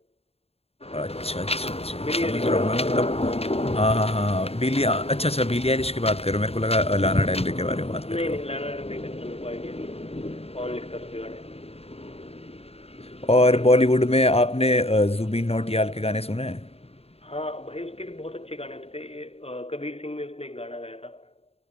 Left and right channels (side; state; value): right; late; 0.29 ms